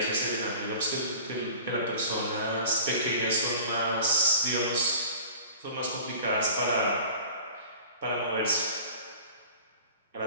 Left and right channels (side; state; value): both; inverted; correlation -0.42